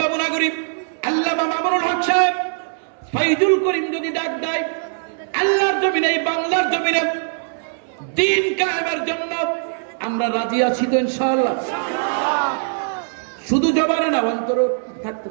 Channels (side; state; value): left; silent; 65 dB below the other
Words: নাগরিক, আল্লামা মামুনুল হক সাহেব, ফাইজুল করিম যদি ডাক দেয়, আল্লাহর জমিনে, এই বাংলার জমিনে দ্বীন কায়েমের জন্য আমরা রাজি আছি তো ইনশাআল্লাহ। শুধু জবানে না, অন্তরে থাকতে